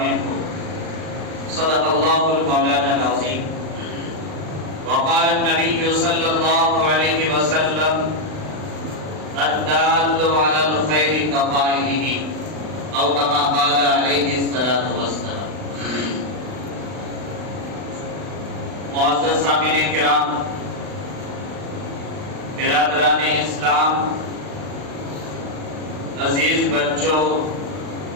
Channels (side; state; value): left; late; 39 ms